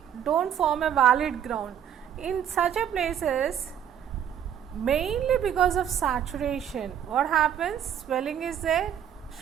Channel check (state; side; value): quieter; left; 9.3 dB